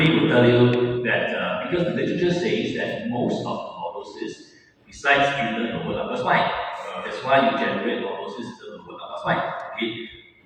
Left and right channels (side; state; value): both; identical; correlation 1.00